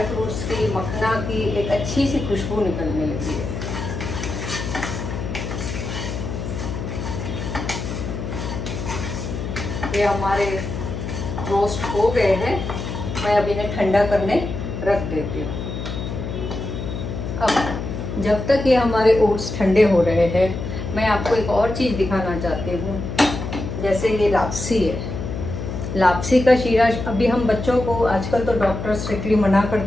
फ्रूट्स की, मखना की एक अच्छी सी खुशबू निकलने लगी है। ये हमारे रोस्ट हो गए हैं, मैं अब इन्हें ठंडा करने रख देती हूँ। अब जब तक ये हमारे ओट्स ठंडे हो रहे हैं, मैं आपको एक और चीज़ दिखाना चाहती हूँ। जैसे ये लापसी है, लापसी का शीरा। अभी हम बच्चों को, आजकल तो डॉक्टर स्ट्रिक्टली मना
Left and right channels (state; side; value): noise; left; hum, 5 dB below the sound